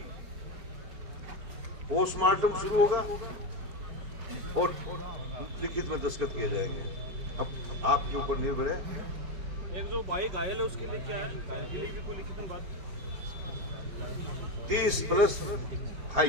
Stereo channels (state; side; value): late; left; 4.4 ms